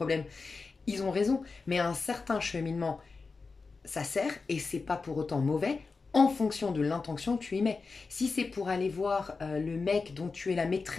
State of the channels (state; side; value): quieter; right; 4.3 dB